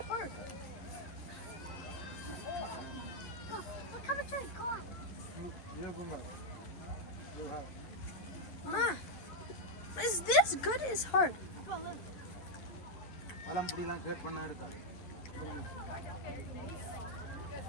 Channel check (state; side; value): late; right; 11 ms